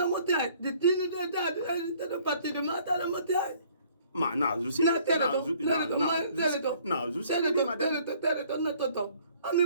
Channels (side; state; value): both; inverted; correlation -0.58